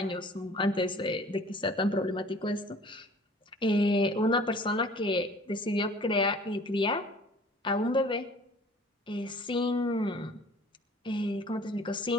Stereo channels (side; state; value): both; normal; correlation 0.49